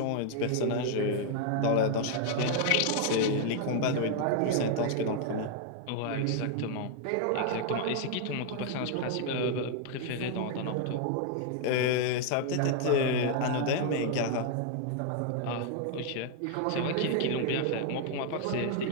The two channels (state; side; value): different; both; correlation 0.00